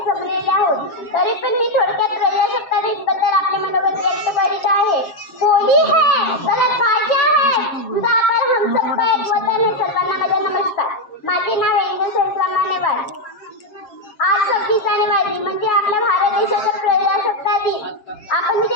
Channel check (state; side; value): late; right; 7.4 ms